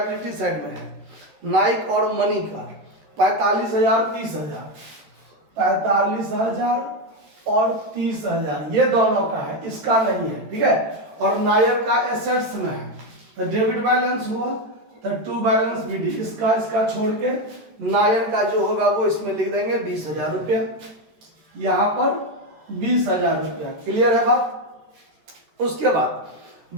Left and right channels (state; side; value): late; left; 13 ms